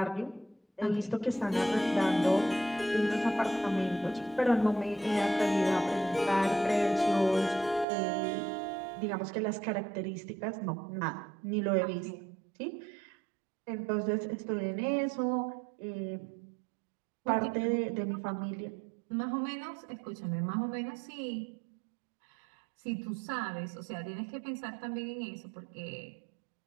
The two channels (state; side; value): drops out; left; at 7.9 s